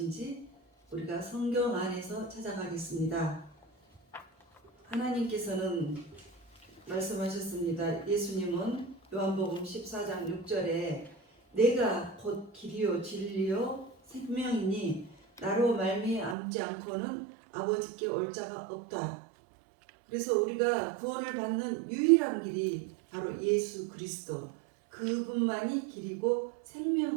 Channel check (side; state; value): left; drops out; at 16.4 s